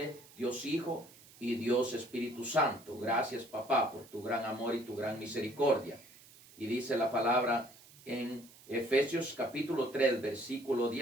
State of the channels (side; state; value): right; noise; hiss, 23 dB below the sound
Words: Dios Hijo y Dios Espíritu Santo. Gracias, papá, por tu gran amor y tu gran misericordia. Y dice la palabra en Efesios capítulo 3, versículo